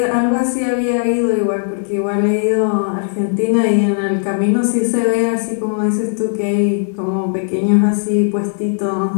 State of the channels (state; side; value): silent; right; digital silence